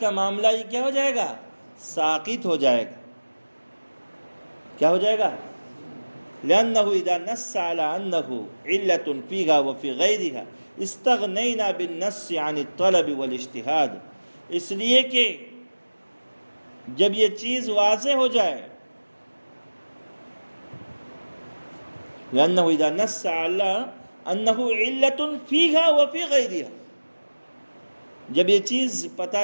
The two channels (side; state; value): both; inverted; correlation -1.00